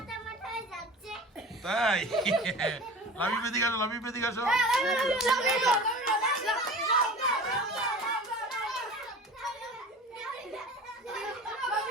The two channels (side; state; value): both; normal; correlation 0.37